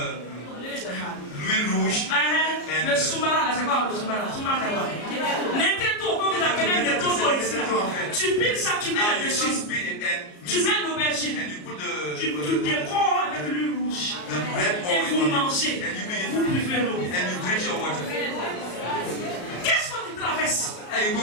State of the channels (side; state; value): right; late; 34 ms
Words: l'huile rouge. Le sombara, là, c'est quoi le sombara? Sombara, c'est quoi? N'importe quoi, vous appelez des totos ici. Tu piles ça, tu mets Now you là-dessus. just beat it and Tu mix mets it, l'aubergine. and you put Tu décores avec l'huile rouge. the red Et vous oil on mangez. it, and you begin Vous to buvez l'eau. and you drink your water. Qu'est-ce que tu traverses? And you